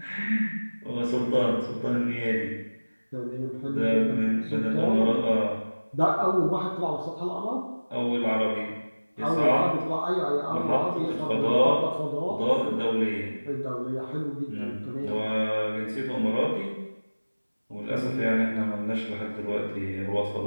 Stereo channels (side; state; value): both; inverted; correlation -1.00